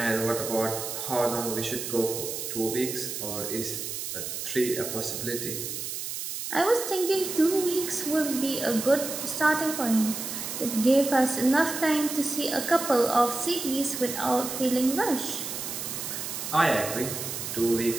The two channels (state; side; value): noise; right; hiss, 5 dB below the sound